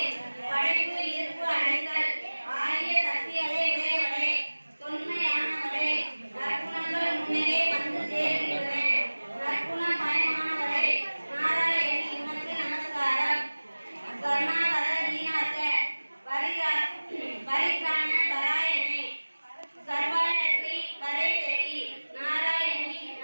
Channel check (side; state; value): both; inverted; correlation -1.00